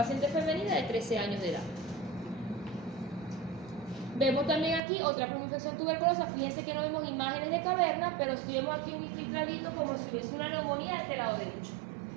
femenina de 13 años de edad. Vemos también aquí otra primoinfección tuberculosa. Fíjense que no vemos imágenes de caverna, pero sí vemos aquí un infiltradito como si hubiese una neumonía de este lado derecho.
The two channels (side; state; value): left; drops out; at 4.8 s